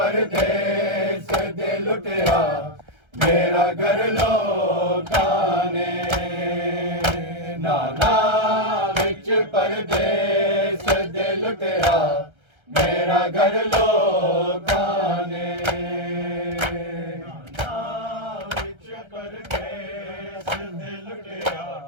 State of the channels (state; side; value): late; left; 1.3 ms